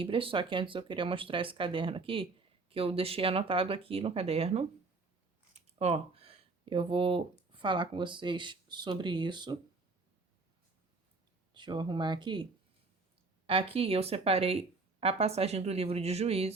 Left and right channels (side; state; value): left; quieter; 3.8 dB